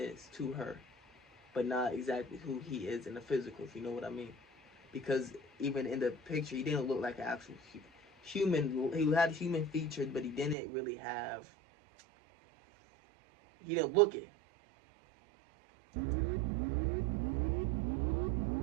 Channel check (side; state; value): left; drops out; at 10.6 s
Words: to her. But not exactly who he is in the physical, if you know what I mean. Because even in the picture, he didn't look like an actual human. He had human features, but he didn't really have. He didn't look it.